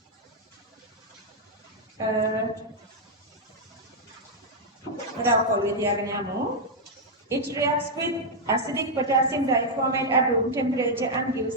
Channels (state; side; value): normal; both; correlation -0.03